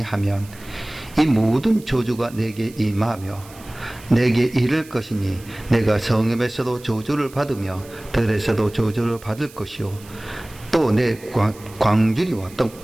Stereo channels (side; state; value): right; noise; hiss, 22 dB below the sound